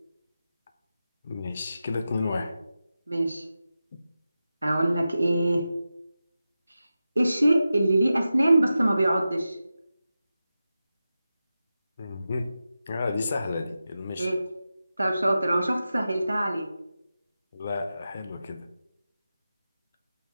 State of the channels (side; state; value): both; inverted; correlation -0.92